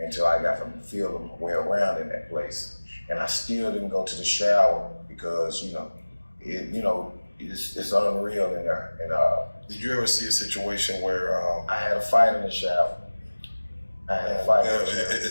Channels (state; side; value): inverted; both; correlation -1.00